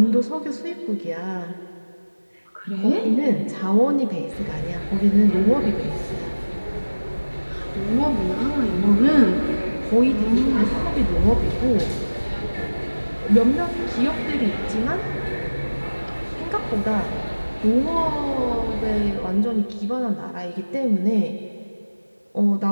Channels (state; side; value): inverted; both; correlation -1.00